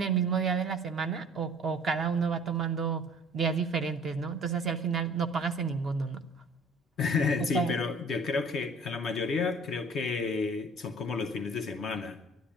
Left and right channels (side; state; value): both; normal; correlation 0.49